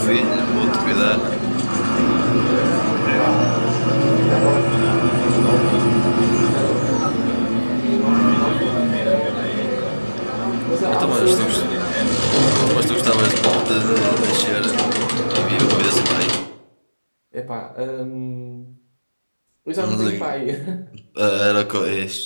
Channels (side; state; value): both; inverted; correlation -1.00